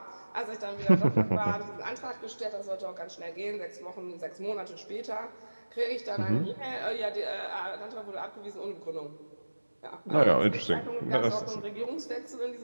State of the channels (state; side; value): inverted; both; correlation -1.00